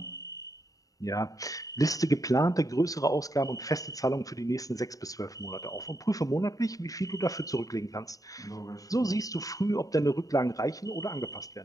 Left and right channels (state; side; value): late; right; 0.17 ms